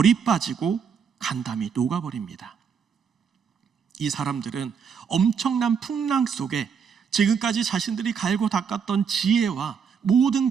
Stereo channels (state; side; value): quieter; left; 6.6 dB